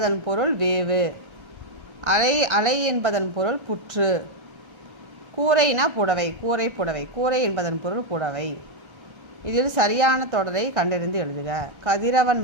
பொருள் வேவு. அலை அலை என்பதன் பொருள் புற்று. கூரைனா புடவை, கூரை புடவை. கூரை என்பதன் பொருள் புடவை. இதில் சரியான தொடரை கண்டறிந்து எழுதுக. கதிரவன்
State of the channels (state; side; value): late; left; 1.3 ms